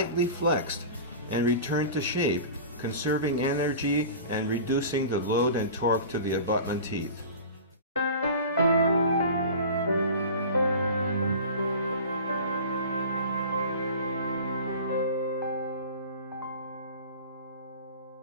flexed and returned to shape, conserving energy and reducing the load and torque to the abutment teeth.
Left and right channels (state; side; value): inverted; both; correlation -0.36